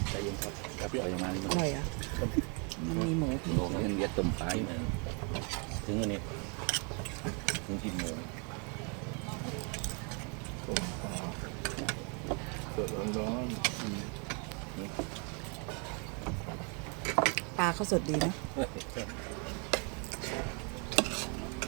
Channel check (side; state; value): left; quieter; 35.9 dB